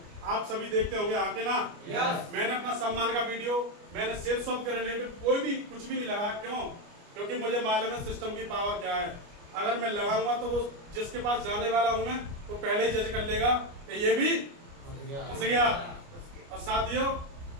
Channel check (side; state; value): left; late; 29 ms